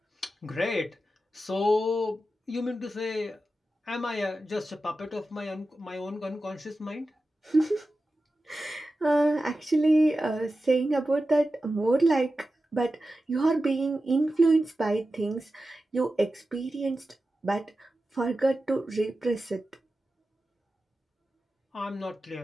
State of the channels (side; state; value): both; normal; correlation 0.93